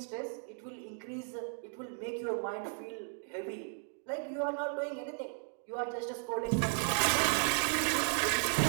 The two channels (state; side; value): silent; left; 55 dB below the other